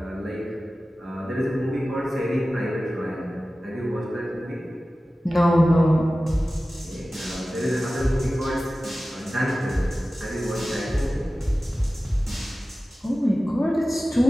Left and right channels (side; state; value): both; normal; correlation 0.96